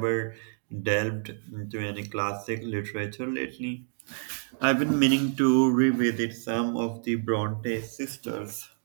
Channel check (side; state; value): left; silent; digital silence